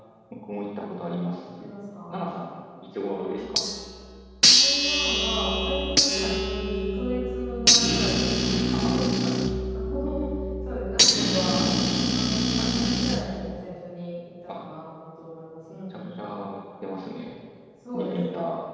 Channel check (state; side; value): identical; both; correlation 1.00